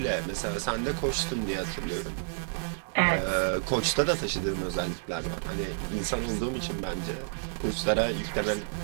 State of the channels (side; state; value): left; silent; digital silence